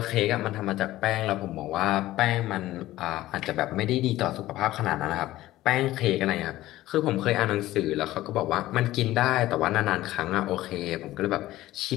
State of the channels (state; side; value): quieter; right; 15.8 dB